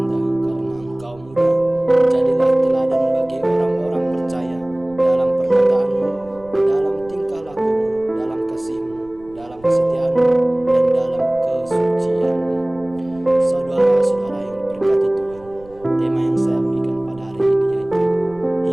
karena engkau muda. Jadilah teladan bagi orang-orang percaya dalam perkataanmu, dalam tingkah lakumu, dalam kasihmu, dalam kesetiaanmu, dan dalam kesucianmu. Saudara-saudara yang diberkati Tuhan, tema yang saya berikan pada hari ini yaitu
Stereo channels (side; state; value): right; noise; rumble, 24 dB below the sound